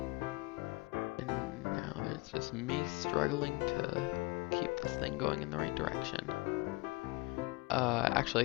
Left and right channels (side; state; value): right; quieter; 24.3 dB